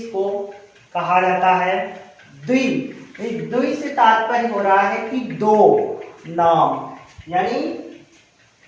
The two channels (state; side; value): identical; both; correlation 1.00